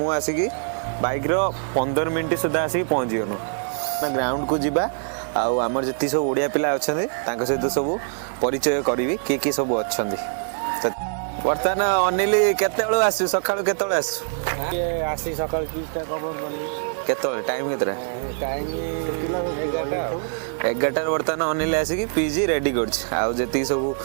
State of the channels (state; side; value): silent; left; digital silence